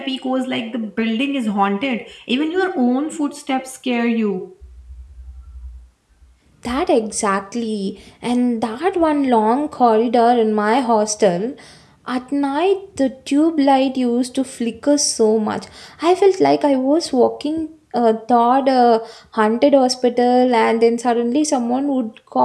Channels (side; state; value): both; identical; correlation 1.00